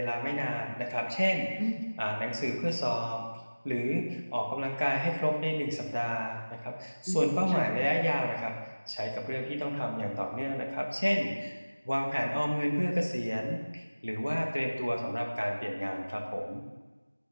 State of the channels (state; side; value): inverted; both; correlation -1.00